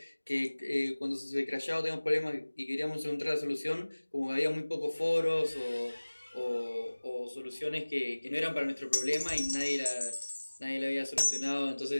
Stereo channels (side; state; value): both; inverted; correlation -1.00